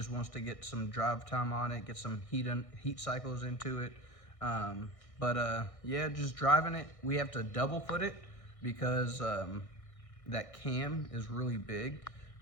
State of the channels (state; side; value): late; right; 1.6 ms